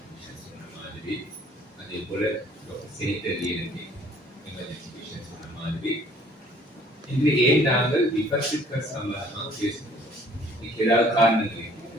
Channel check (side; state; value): both; normal; correlation 0.56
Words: சொன்ன மாதிரி அதே போல டாக்டர் செனிட்டர் லியனி எமர்ஜென்சி பேஷண்ட் சொன்ன மாதிரி இன்று ஏன் நாங்கள் விபத்துக்கள் சம்பந்தமாக பேசுகிறோம். இதுக்கு ஏதாவது காரணங்கள்